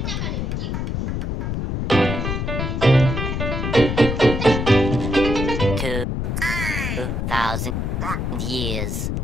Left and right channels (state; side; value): noise; left; rumble, 1 dB below the sound